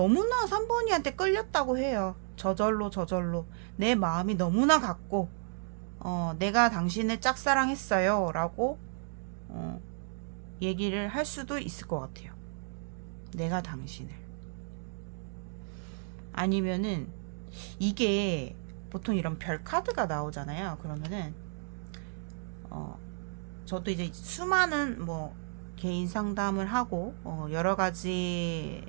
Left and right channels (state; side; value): silent; left; 56 dB below the other